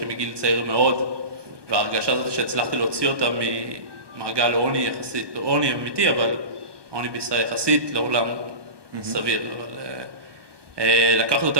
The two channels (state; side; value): late; left; 1.2 ms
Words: מגיל צעיר מאוד, וההרגשה הזאת שהצלחתי להוציא אותם ממעגל עוני יחסית, לא עוני אמיתי, אבל עוני בישראל יחסית לעולם סביר. אבל לקחת